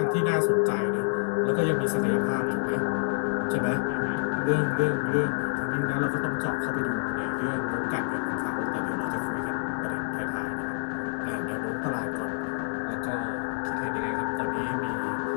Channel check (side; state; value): right; silent; digital silence